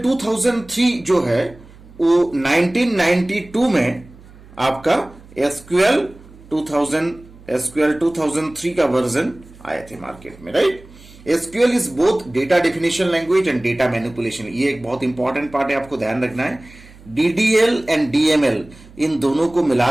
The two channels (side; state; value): right; noise; hum, 22 dB below the sound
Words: 2003 जो है वो 1992 में आपका SQL 2003 का वर्जन आए थे मार्केट में, right? SQL is both data definition language and data manipulation. ये एक बहुत इंपॉर्टेंट पार्ट है, आपको ध्यान रखना है. DDL एंड DML इन दोनों को मिला